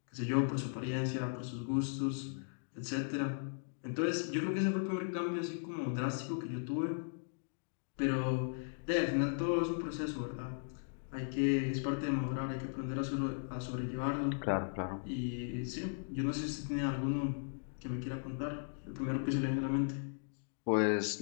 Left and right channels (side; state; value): right; silent; digital silence